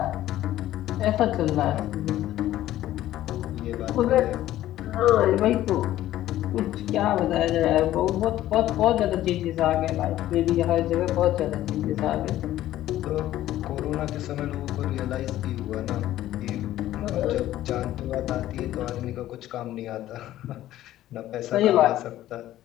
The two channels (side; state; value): right; quieter; 13.9 dB